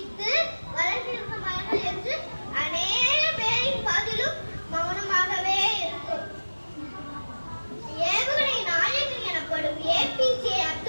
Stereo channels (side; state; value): both; inverted; correlation -1.00